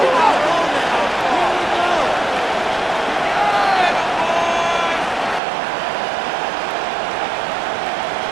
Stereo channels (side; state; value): left; drops out; at 5.4 s